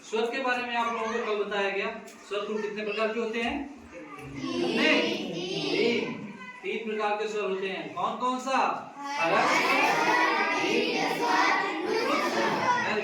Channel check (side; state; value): both; identical; correlation 1.00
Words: स्वर के बारे में आप लोगों को कल बताया गया। स्वर कुल कितने प्रकार के होते हैं? कितने? तीन प्रकार के स्वर होते हैं। कौन कौन सा?